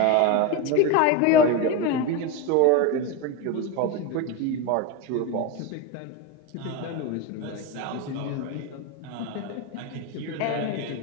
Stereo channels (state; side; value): different; both; correlation 0.04